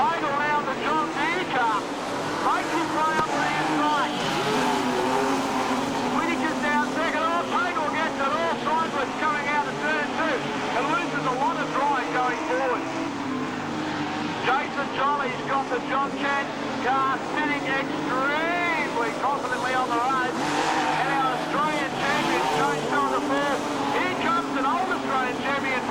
now the John Deere car. Makes his way up to the inside. Whittaker's down second. Oh, Pagel gets it all sideways coming out of turn 2 and loses a lot of drive going forward. Jason Jolly's got the John Chance car sitting extremely confidently on the road. And our Australian champion, James on the floor. Here comes an old Australian champion,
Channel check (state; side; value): identical; both; correlation 1.00